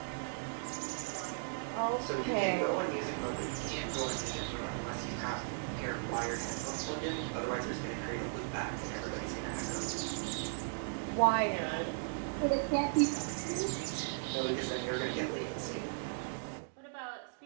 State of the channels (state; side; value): silent; left; digital silence